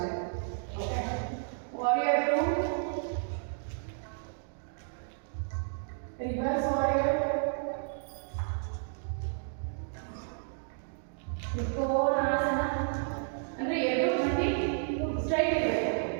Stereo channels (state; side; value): silent; left; digital silence